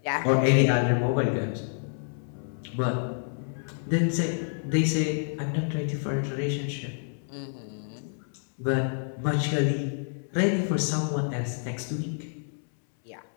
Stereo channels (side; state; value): right; silent; 59 dB below the other